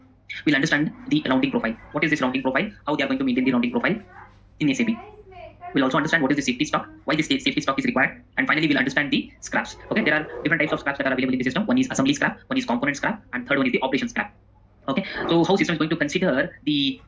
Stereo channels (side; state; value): both; identical; correlation 1.00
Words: We'll understand the rounding profile. What is this rounding profile? How they are going to maintain the rounding profile in SAP. We'll also understand what is the safety stock, why this safety stock is required, and finally we'll understand the scraps. Okay, there are different types of scraps that are available in the system. One is assembly scrap, one is component scrap, and third one is the operation scrap. Okay, so how system is going to consider the